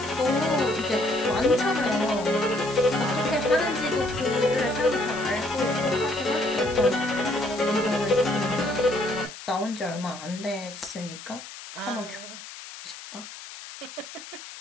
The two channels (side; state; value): left; noise; hiss, 14 dB below the sound